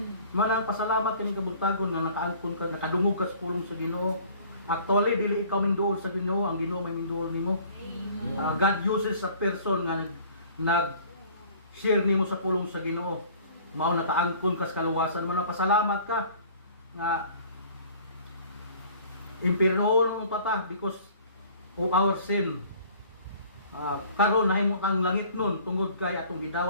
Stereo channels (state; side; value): inverted; both; correlation -0.50